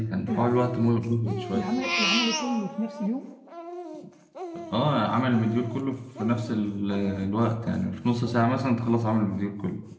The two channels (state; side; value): identical; both; correlation 1.00